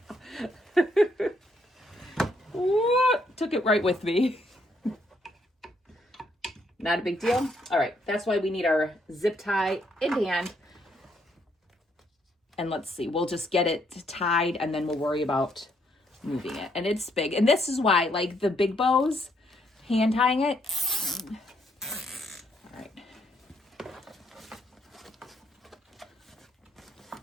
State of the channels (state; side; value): normal; both; correlation 0.72